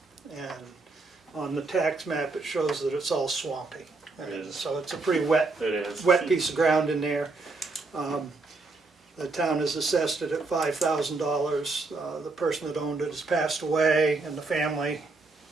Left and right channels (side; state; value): left; quieter; 3.6 dB